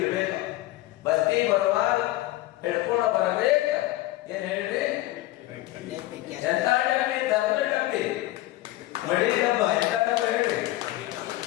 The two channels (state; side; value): quieter; right; 16.8 dB